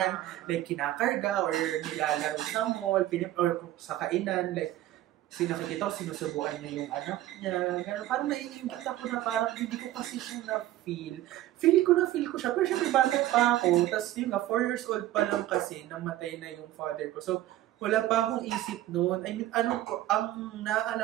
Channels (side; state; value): left; quieter; 14.6 dB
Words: like kinakarga or nilalaro sa mall, or sa kainan, like, Kasi nakikita ko, sinusubuan niya yung anak niya. Gano'n, parang naiingit ako na parang hindi ko kasi siya na-feel. Feel ko siya. Pero syempre, bakit pa ako? Tapos yun nga, 4 years old pa lang kasi, namatay na yung father ko. So, wala pa akong isip noon. I mean, ang